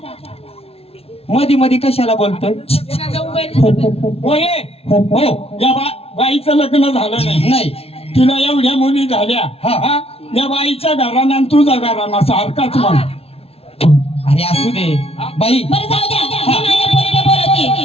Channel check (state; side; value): late; right; 0.29 ms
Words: मधी मधी कशाला बोलतोय? तिला जाऊन बाहेर- होय हो या बाईचं लग्न झालं नाही नाही तिला एवढ्या मुली झाल्या हा. हा या बाईच्या घराना आणि तुझा घराना सारखाच म्हण. अरे असू दे बाई बरं जाऊ द्या, मी माझ्या पोरीला बोलवते.